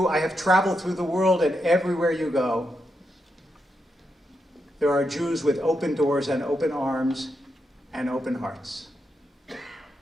I have traveled through the world, and everywhere you go, there are Jews with open doors and open arms and open hearts.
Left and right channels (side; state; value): both; normal; correlation 0.84